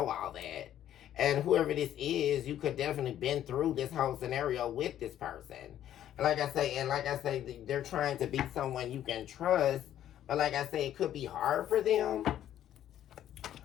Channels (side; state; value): right; quieter; 11.4 dB